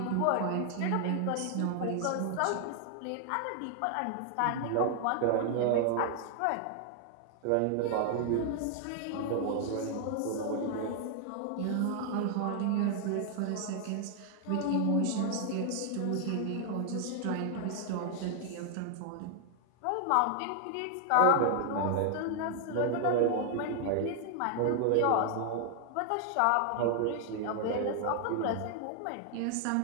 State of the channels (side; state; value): both; different; correlation 0.00